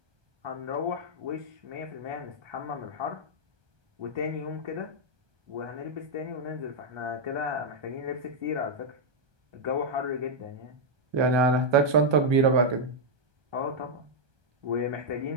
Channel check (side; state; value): left; late; 1.2 ms